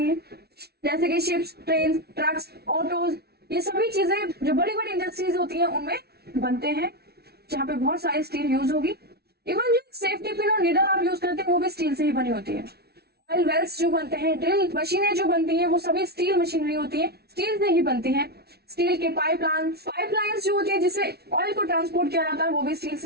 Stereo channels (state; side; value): late; left; 0.46 ms